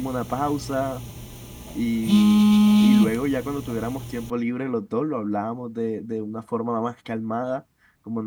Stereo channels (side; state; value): both; identical; correlation 1.00